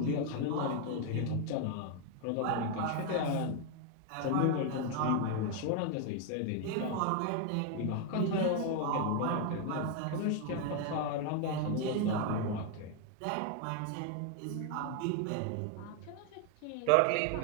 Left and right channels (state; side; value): different; both; correlation 0.01